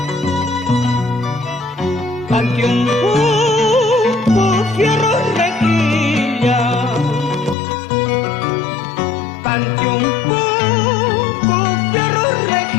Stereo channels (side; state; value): right; drops out; at 7.6 s